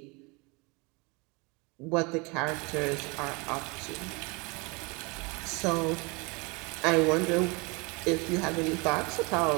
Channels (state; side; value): quieter; left; 28.2 dB